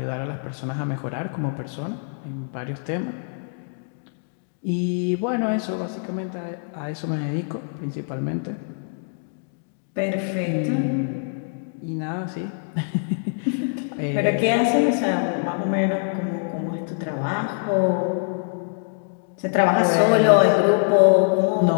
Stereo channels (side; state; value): right; silent; digital silence